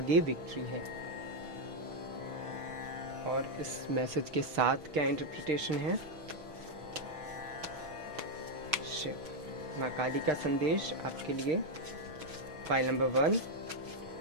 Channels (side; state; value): left; late; 6.1 ms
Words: विक्ट्री है। और इस मैसेज के साथ क्या इंटरप्रिटेशन है? शिव, माँ काली का संदेश आपके लिए। फाइल नंबर 1,